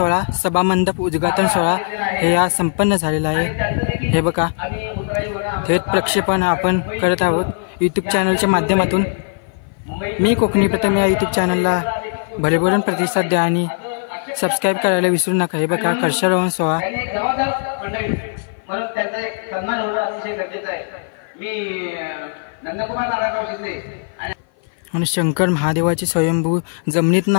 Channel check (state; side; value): silent; right; 56 dB below the other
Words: सभामंडप उद्घाटन सोहळा हे आज संपन्न झालेला आहे। हे बघा थेट प्रक्षेपण आपण करत आहोत यूट्यूब चॅनलच्या माध्यमातून। मी कोकणी प्रथम या यूट्यूब चॅनलला भरभरून प्रतिसाद द्या आणि सबस्क्राईब करायला विसरू नका। हे बघा कलशारोहण सोहळा आणि शंकर महादेवाचे स्वयंभू जमिनीत